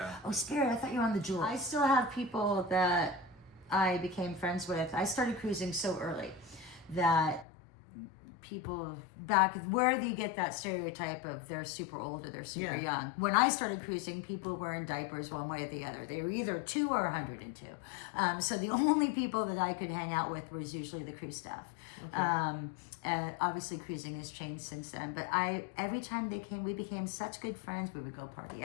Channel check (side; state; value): right; drops out; at 7.5 s